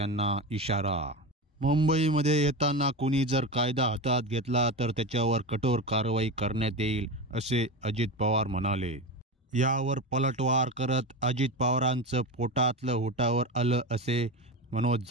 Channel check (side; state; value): both; normal; correlation 0.22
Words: इशारा। मुंबईमध्ये येताना कुणी जर कायदा हातात घेतला तर त्याच्यावर कठोर कारवाई करण्यात येईल असे अजित पवार म्हणाले। यावर पलटवार करत अजित पवारांचं पोटातलं होटावर आलं असे मनोज